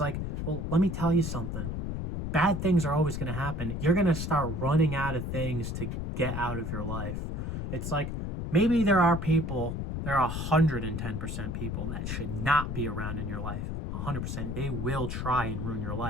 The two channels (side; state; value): left; noise; rumble, 3 dB below the sound